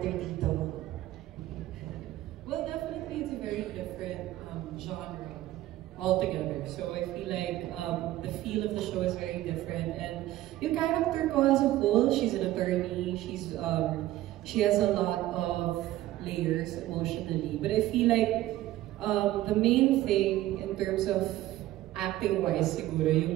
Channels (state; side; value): quieter; left; 15.2 dB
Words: dito? Well, definitely it's a very different genre altogether. So I feel like the feel of the show is very different. And yung character ko as a whole, she's an attorney. She has a lot of layers emotionally. But I feel like the main thing in terms of acting-wise siguro,